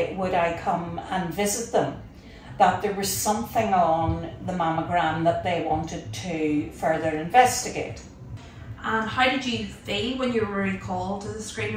would I come and visit them, that there was something on the mammogram that they wanted to further investigate. And how did you feel when you were recalled to the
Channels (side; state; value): both; identical; correlation 1.00